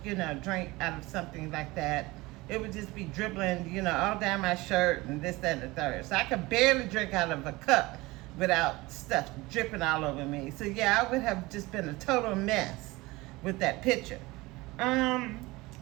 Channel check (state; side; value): quieter; left; 21.4 dB